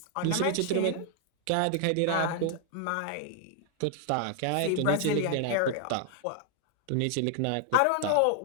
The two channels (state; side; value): different; both; correlation 0.00